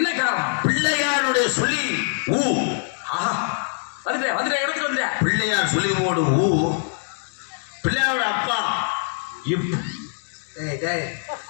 காரணம்? பிள்ளையாருடைய சொல்லி ஊ. ஆஹா, வந்துட்டேன் இடத்துக்கு வந்துட்டேன். பிள்ளையார் சொல்லி போடு ஊ. பிள்ளையாரோட அப்பா இப். டேய் டேய்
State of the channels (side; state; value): right; silent; digital silence